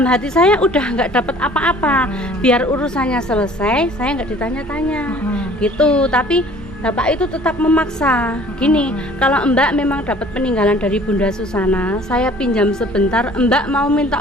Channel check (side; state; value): both; normal; correlation 0.51